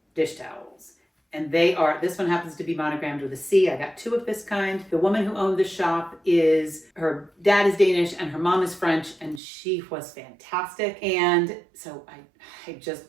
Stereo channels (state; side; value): drops out; left; at 9.4 s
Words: dish towels. And this one happens to be monogrammed with a C. I got 2 of this kind. The woman who owned the shop her dad is Danish and her mom is French, and she was fantastic. And so I just